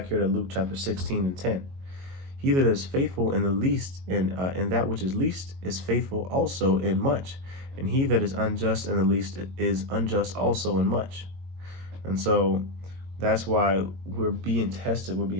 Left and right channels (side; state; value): left; late; 22 ms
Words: here to Luke chapter 16 and 10. He that is faithful in the least, in that which is least, is faithful also in much. And he that is unjust in the least is unjust also in much. And so that's why we're being tested, we're